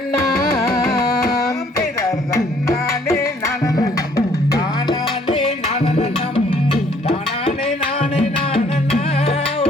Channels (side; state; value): both; normal; correlation 0.62